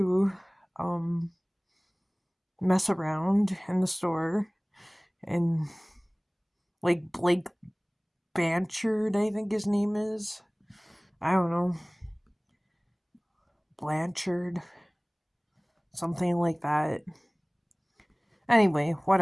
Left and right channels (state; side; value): identical; both; correlation 1.00